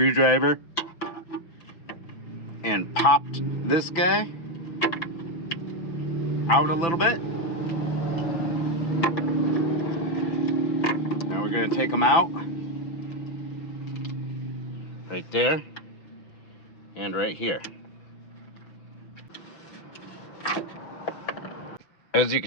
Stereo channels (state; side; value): late; right; 6.0 ms